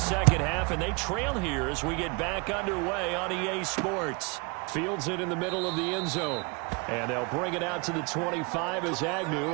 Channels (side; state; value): left; quieter; 30.0 dB